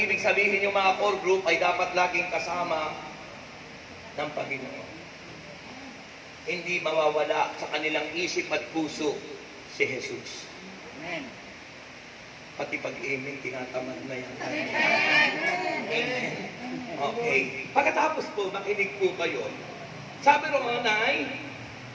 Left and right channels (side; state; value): both; identical; correlation 1.00